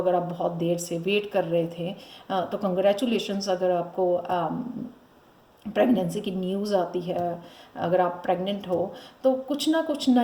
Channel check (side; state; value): both; identical; correlation 1.00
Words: आप बहुत देर से वेट कर रहे थे, तो कंग्रेचुलेशंस। अगर आपको प्रेगनेंसी की न्यूज़ आती है, अगर आप प्रेग्नेंट हो, तो कुछ ना कुछ